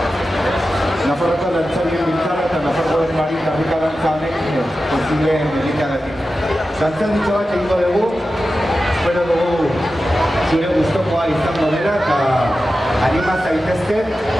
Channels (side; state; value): both; normal; correlation 0.93